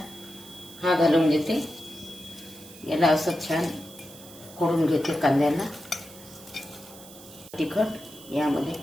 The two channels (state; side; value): noise; right; hiss, 19 dB below the sound